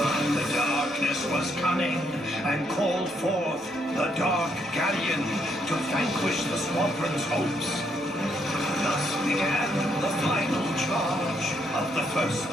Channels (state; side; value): normal; both; correlation 0.74